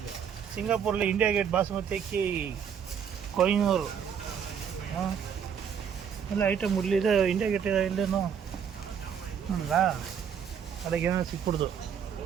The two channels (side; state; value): left; quieter; 7.7 dB